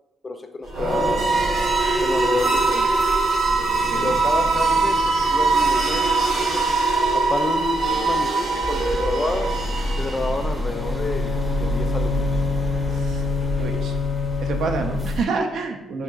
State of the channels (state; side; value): normal; both; correlation 0.78